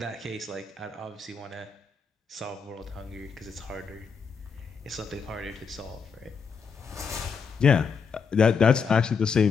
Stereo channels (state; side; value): quieter; right; 5.7 dB